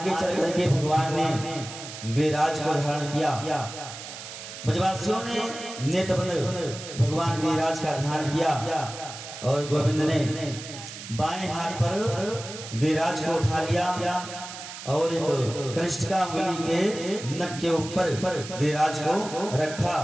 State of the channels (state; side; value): noise; right; hiss, 11 dB below the sound